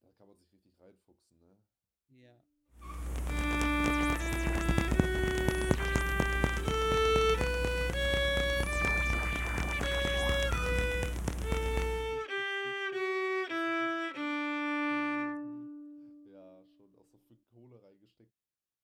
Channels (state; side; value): identical; both; correlation 1.00